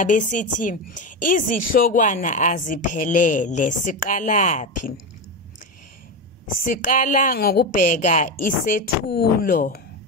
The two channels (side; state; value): both; normal; correlation 0.16